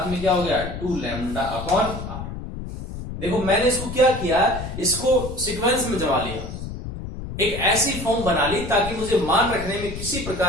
में क्या हो गया 2 लैम्डा अपॉन r। देखो मैंने इसको क्या किया, इसको सीक्वेंस में जमा लिया, एक ऐसी फॉर्म बना ली ताकि मुझे मान रखने में किसी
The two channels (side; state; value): left; noise; rumble, 8 dB below the sound